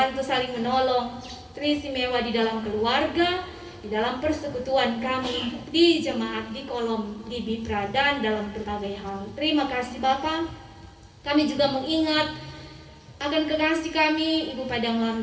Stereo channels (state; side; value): identical; both; correlation 1.00